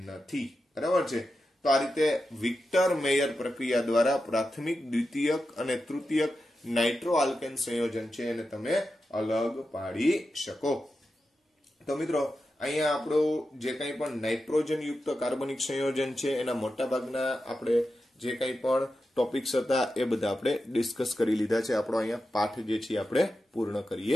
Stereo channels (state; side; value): normal; both; correlation 0.90